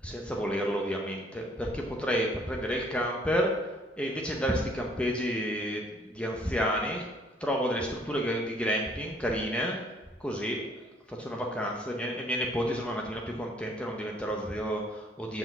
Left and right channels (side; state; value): both; normal; correlation 0.61